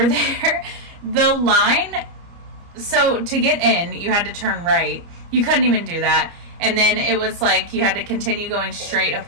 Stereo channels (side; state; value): left; late; 29 ms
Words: there. The line, so to get in, you had to turn right. You couldn't even do that. And then it was like you had to continue going straight